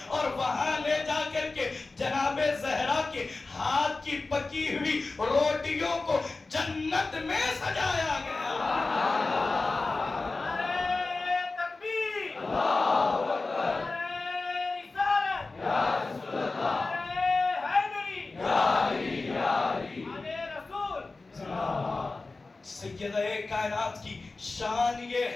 اور وہاں لے جا کر کے جناب زہرا کے ہاتھ کی پکی ہوئی روٹیوں کو جنت میں سجایا گیا۔ سیدہ کائنات کی شان یہ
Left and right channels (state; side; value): quieter; right; 3.6 dB